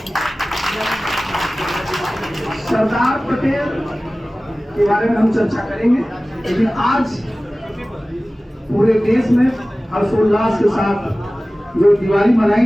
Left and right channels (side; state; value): both; normal; correlation 0.97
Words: सरदार पटेल के बारे में हम चर्चा करेंगे, लेकिन आज पूरे देश में हर्षोल्लास के साथ जो दिवाली मनाई